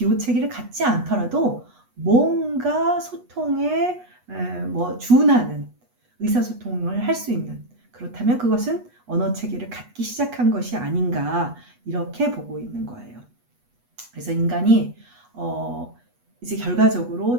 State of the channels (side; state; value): left; late; 8.2 ms